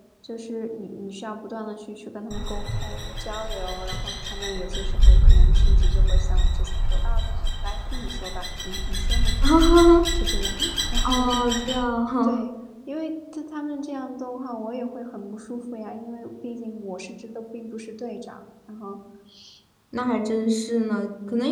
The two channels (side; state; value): both; identical; correlation 1.00